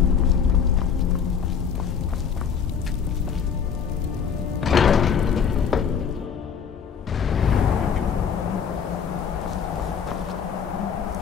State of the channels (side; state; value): right; quieter; 7.0 dB